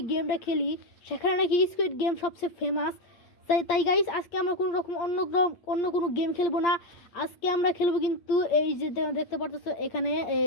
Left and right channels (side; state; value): right; late; 8.7 ms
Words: গেমটা খেলি, সেখানে নাকি স্কুইড গেম সবচেয়ে ফেমাস। তাই গাইস আজকে আমরা কোনো রকম অন্য কোনো গেম খেলবো না। আজকে আমরা খেলবো কিন্তু এই যে দেখতে পারতেছো এখানে